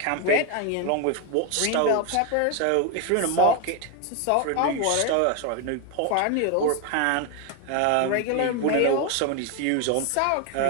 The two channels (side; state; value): both; different; correlation 0.01